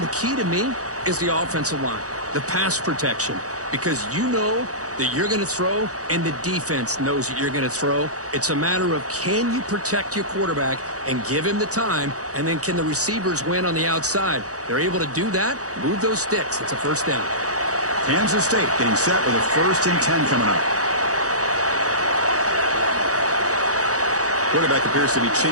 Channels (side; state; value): left; late; 0.66 ms